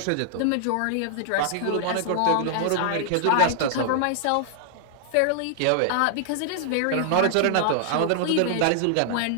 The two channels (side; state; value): both; different; correlation -0.01